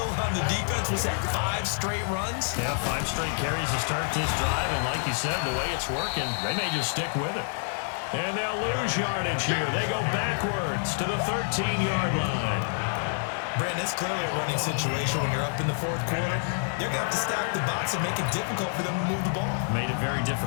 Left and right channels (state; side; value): silent; right; digital silence